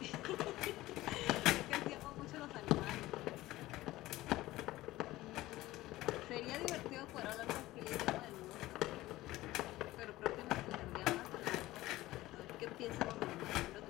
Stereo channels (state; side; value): quieter; right; 17.2 dB